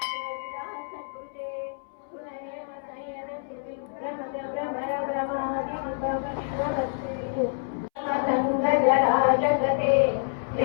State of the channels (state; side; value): silent; right; 60 dB below the other